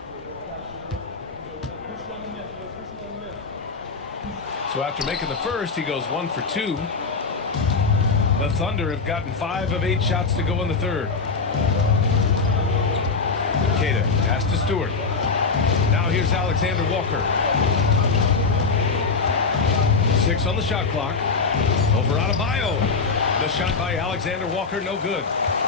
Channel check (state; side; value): quieter; right; 4.6 dB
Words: So after making the first, he goes 1 for 2. The Thunder have gotten 5 of 8 shots to go in the third. Queta, pass to Stewart. Now here's Alexander Walker. 6 on the shot clock. Over Adebayo. The shot by Alexander Walker, no good.